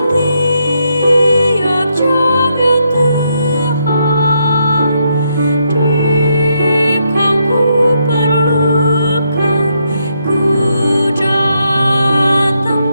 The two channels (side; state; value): both; inverted; correlation -0.78